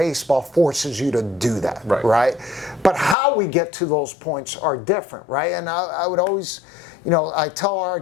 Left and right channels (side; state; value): right; drops out; at 3.2 s